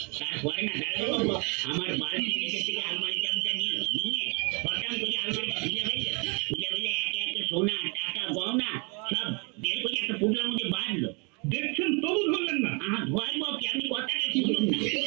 তারপরে না দাঁড়ানো বাবু আমার বাড়ির নিচে থেকে আলমারি চাবিটা নিল, নিয়ে হঠাৎ করে আলমারিটা খুলে ফেললো, খুলে ফেলে একে একে সোনা টাকা গহনা সব বের করে একটা পুটলার মধ্যে বাঁধলো। দেখছেন তবু ধরলেন না? ধরবো কি, আপনি কথাটা শুনুন না।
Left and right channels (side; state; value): left; quieter; 32.8 dB